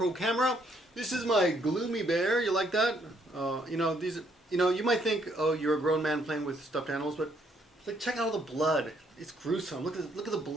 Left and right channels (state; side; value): normal; both; correlation 0.70